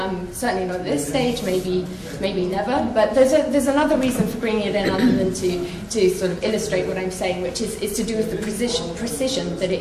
certainly not at this stage, maybe never, but there's another reason for bringing it in other than to sort of illustrate what I'm saying, which is to do with the precision that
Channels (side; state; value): both; identical; correlation 1.00